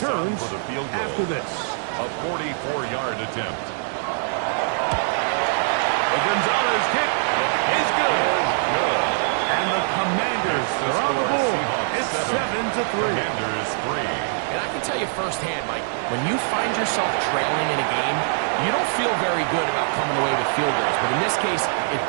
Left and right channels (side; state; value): left; silent; digital silence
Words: for the field goal. after this. A 44-yard attempt. The Gonzalez kick is good. And the Commanders are on the board. It's 7-3. Commanders 3. And I can tell you firsthand, Mike, when you find yourself trailing in a game, you don't feel very good about coming away with field goals. But in this case, it